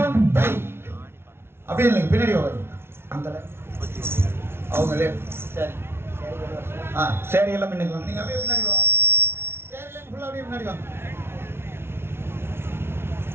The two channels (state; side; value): late; left; 0.12 ms